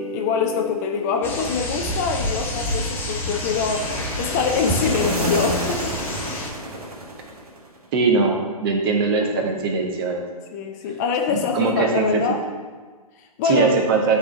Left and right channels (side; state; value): both; normal; correlation -0.13